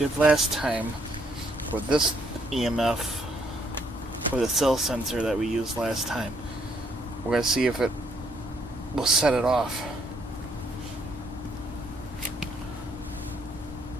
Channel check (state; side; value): normal; both; correlation 0.70